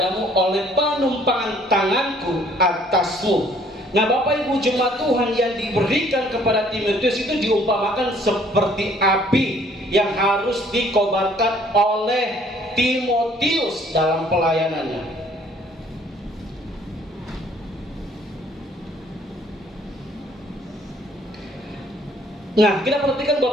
oleh penumpangan tanganku atasmu. Nah, Bapak Ibu jemaat Tuhan, yang diberikan kepada Timotius itu diumpamakan seperti api yang harus dikobarkan oleh Timotius dalam pelayanannya. Nah, kita perhatikan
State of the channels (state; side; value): normal; both; correlation 0.60